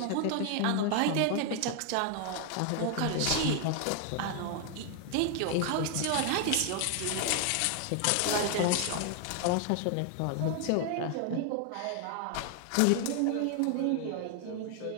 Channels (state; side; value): different; both; correlation 0.00